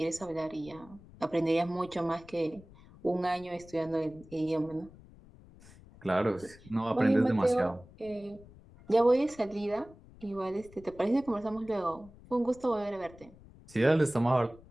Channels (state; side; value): noise; left; rumble, 22 dB below the sound